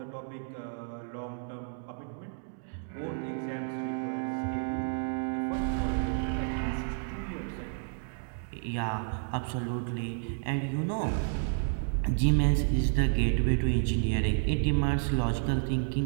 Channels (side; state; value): left; silent; digital silence